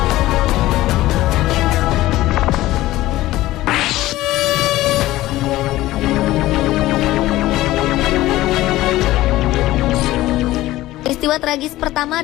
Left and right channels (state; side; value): quieter; right; 16.5 dB